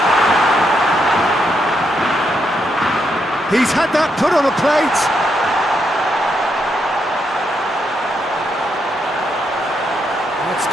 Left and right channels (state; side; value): normal; both; correlation 0.79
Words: He's had that put on a plate. That's